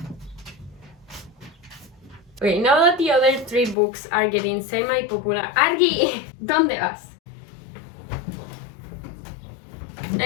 Okay, now that the other 3 books are getting semi-popular. Argi, ¿dónde vas?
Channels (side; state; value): right; drops out; at 3.8 s